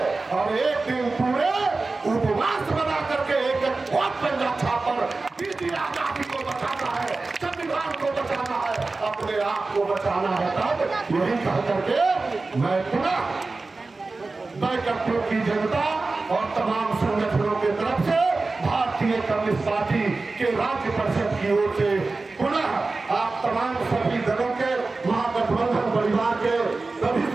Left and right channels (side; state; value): left; quieter; 3.6 dB